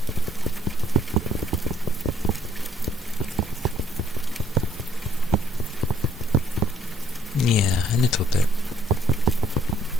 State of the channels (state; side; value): normal; both; correlation 0.66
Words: Yeah, a little bit.